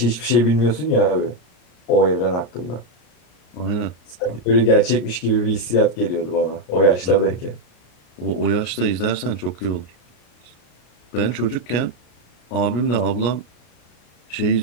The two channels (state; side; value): late; right; 34 ms